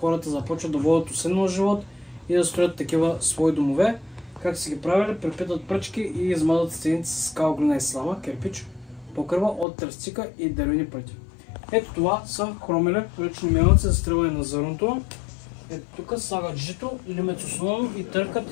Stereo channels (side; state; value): right; drops out; at 9.7 s